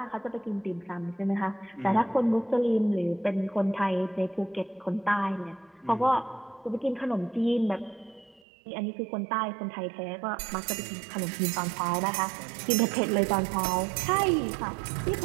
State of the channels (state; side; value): drops out; left; at 8.4 s